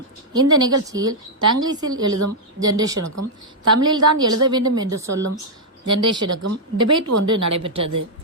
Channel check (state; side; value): normal; both; correlation -0.05